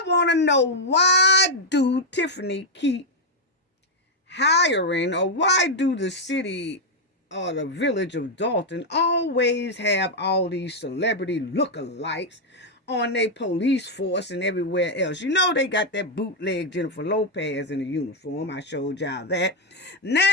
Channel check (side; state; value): both; normal; correlation 0.01